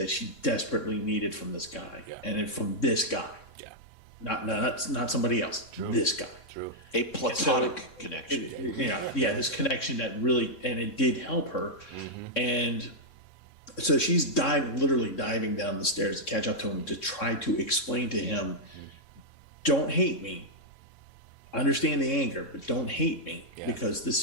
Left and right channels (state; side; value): late; right; 3.6 ms